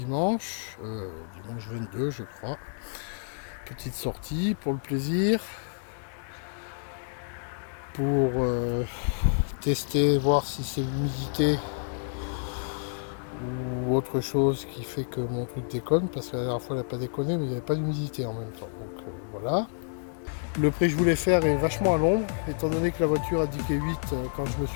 22 je crois. Petite sortie pour le plaisir, pour tester, voir si c'est l'humidité ou autre chose qui fait que mon truc déconne, parce que la dernière fois elle n'a pas déconné, mais il n'y avait pas d'humidité en même temps. Donc voilà. Le prix que je voulais faire est vachement à l'ombre, étant donné que la voiture indiquait 8 quand je me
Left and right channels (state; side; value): silent; right; digital silence